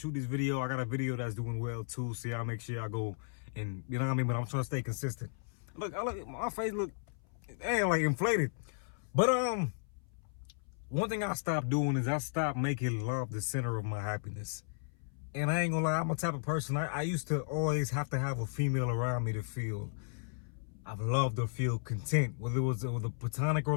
this video. I got a video that's doing well too. So I'll make sure I go and you know what I mean. But I'm trying to stay consistent. Look, my face look like inflated. But one thing I stopped doing is I stopped making love the center of my happiness. And I ain't gonna lie, I'm a type of person, I used to always have to have a female around me to feel I've loved or feel content. Whether it was a platonic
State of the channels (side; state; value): right; silent; 55 dB below the other